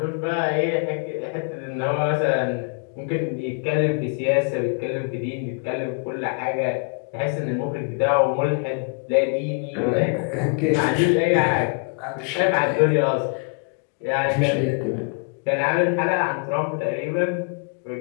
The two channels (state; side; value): quieter; right; 39.6 dB